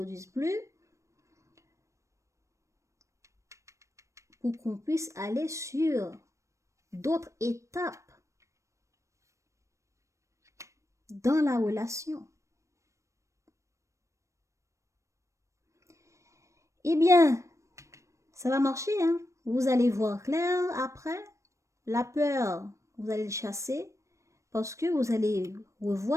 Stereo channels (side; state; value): left; late; 0.15 ms